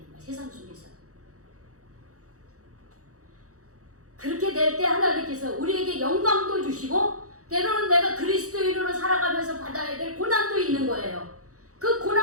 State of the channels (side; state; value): left; late; 0.65 ms